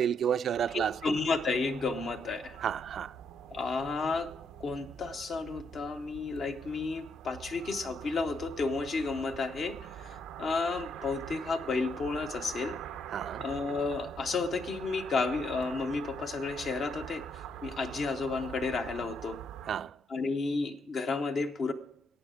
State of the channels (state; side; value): normal; both; correlation 0.75